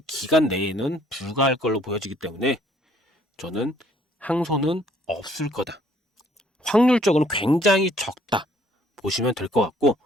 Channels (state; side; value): normal; both; correlation 0.62